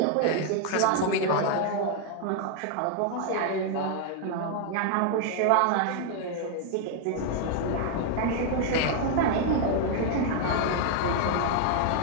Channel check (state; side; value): different; both; correlation 0.00